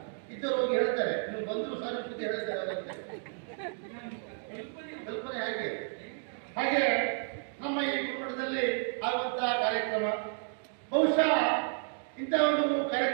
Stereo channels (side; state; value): left; silent; 57 dB below the other